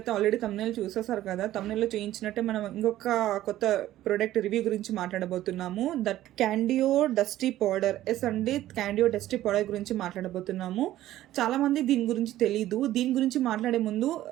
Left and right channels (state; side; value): quieter; left; 14.1 dB